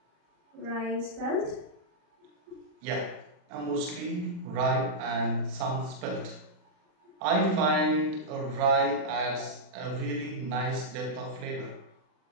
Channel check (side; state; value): left; late; 40 ms